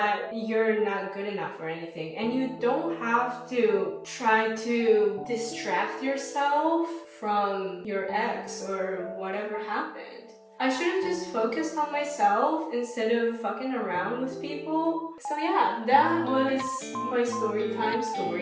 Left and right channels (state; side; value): identical; both; correlation 1.00